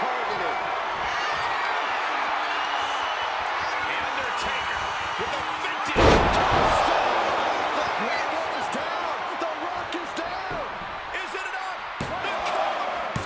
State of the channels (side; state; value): both; identical; correlation 1.00